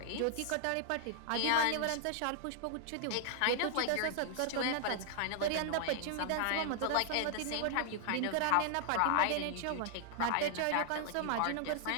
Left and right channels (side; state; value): both; different; correlation 0.00